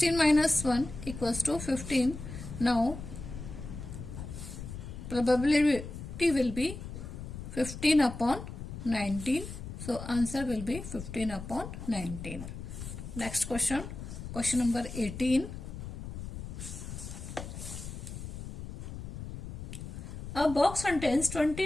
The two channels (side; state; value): left; noise; rumble, 9 dB below the sound